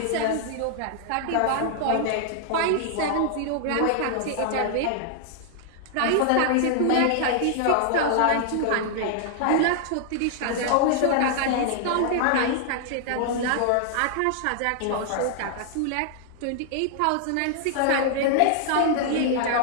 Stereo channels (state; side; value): different; both; correlation -0.01